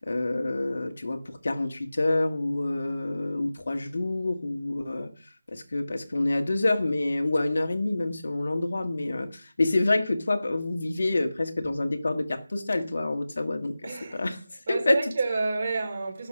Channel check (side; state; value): both; inverted; correlation -0.96